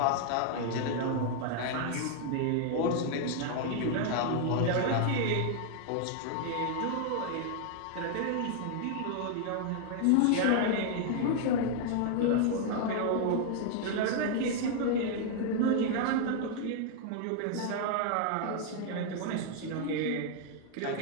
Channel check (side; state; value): both; different; correlation 0.00